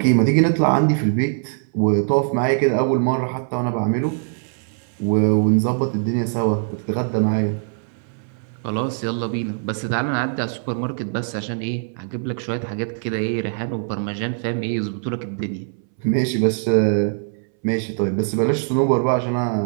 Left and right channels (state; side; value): silent; left; 62 dB below the other